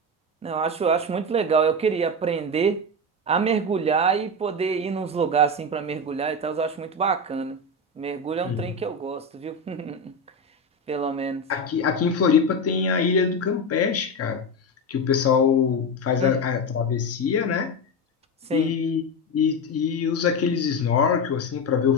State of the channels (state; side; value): normal; both; correlation 0.16